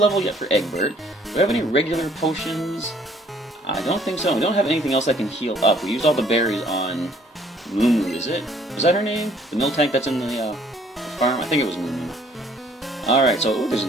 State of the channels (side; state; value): both; normal; correlation 0.61